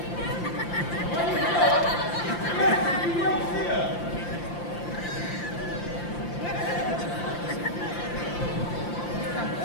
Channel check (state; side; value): late; right; 5.8 ms